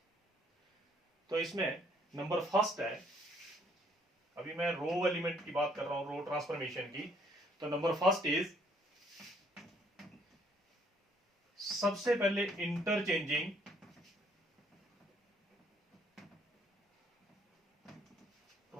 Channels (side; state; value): both; normal; correlation 0.66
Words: तो इसमें नंबर फर्स्ट है, अभी मैं रो एलिमेंट की बात कर रहा हूं, रो ट्रांसफॉर्मेशन की। तो नंबर फर्स्ट इज, सबसे पहले इंटरचेंजिंग